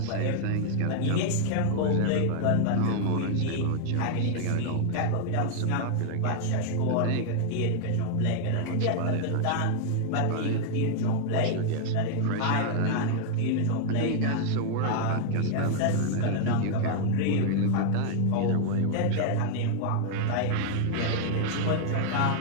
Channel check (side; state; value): both; different; correlation 0.00